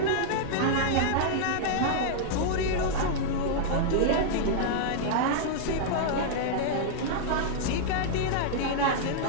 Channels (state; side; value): different; both; correlation -0.01